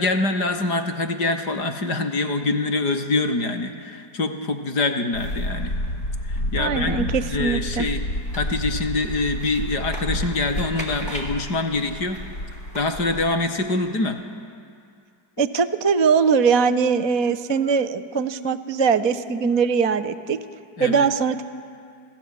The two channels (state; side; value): late; right; 4.9 ms